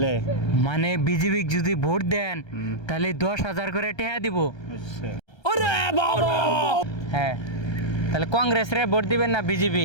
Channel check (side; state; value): right; late; 1.3 ms